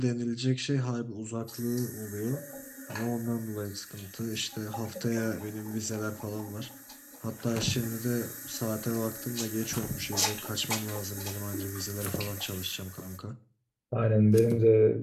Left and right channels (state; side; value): identical; both; correlation 1.00